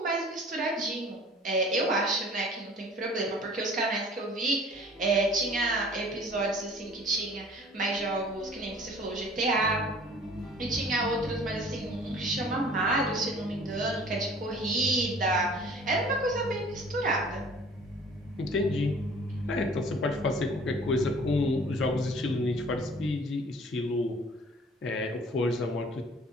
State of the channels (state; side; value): normal; both; correlation 0.49